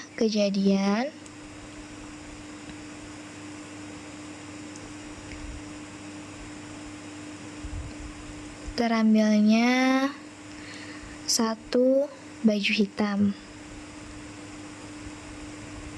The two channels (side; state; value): both; identical; correlation 1.00